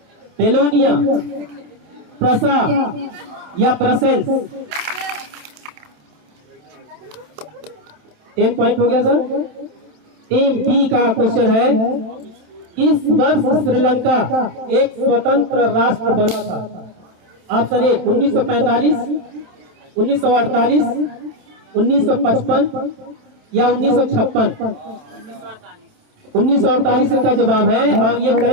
बेलोनिया, प्रसा या ब्रसेल्स। 10 पॉइंट हो गया सर। टीम बी का क्वेश्चन है, इस वर्ष श्रीलंका एक स्वतंत्र राष्ट्र बना था? ऑप्शन ए 1945, 1948, 1955 या 1956। 1948 इनका जवाब है और ये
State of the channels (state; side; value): late; left; 27 ms